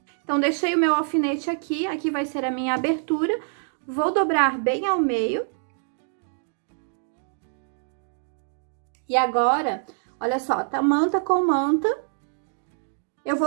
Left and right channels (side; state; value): left; silent; 60 dB below the other